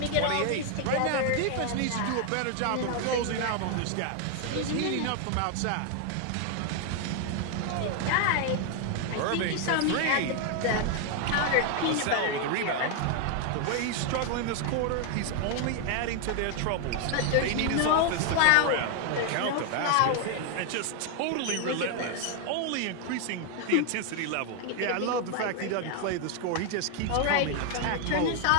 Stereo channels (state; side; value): different; both; correlation 0.00